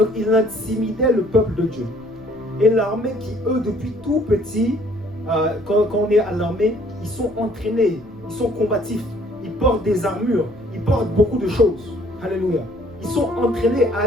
ils intimidaient le peuple de Dieu. Et l'armée qui, eux, depuis tout petit, quand on est à l'armée, ils sont entraînés, ils sont combatifs, ils portent des armures, ils portent beaucoup de choses. Alléluia. Ils sont entraînés à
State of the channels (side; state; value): left; noise; rumble, 25 dB below the sound